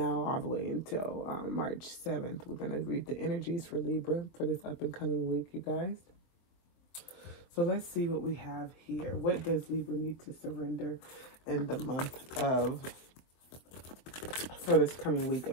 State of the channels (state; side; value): late; right; 24 ms